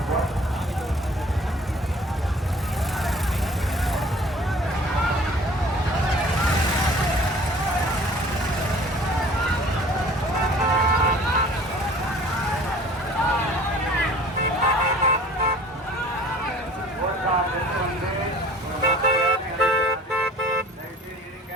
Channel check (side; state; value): both; normal; correlation 0.48